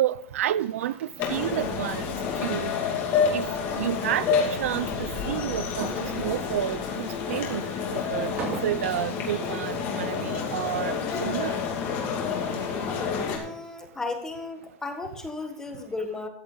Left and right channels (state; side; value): normal; both; correlation 0.01